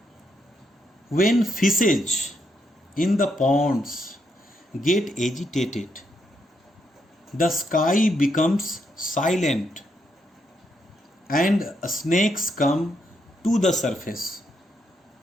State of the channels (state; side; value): normal; both; correlation 0.78